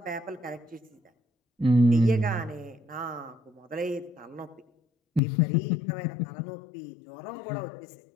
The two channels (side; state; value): right; drops out; at 5.2 s